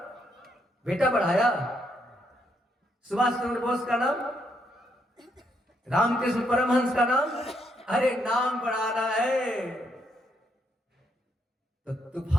बेटा बढ़ाया। सुभाष चंद्र बोस का नाम, रामकृष्ण परमहंस का नाम, अरे नाम बढ़ाना है तो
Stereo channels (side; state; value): both; normal; correlation 0.76